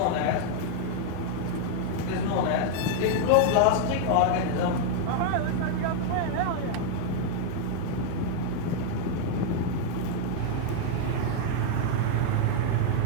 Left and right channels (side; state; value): both; different; correlation 0.00